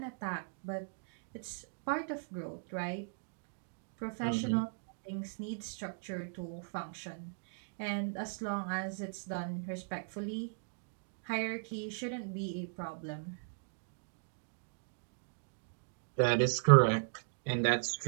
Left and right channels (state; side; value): silent; left; digital silence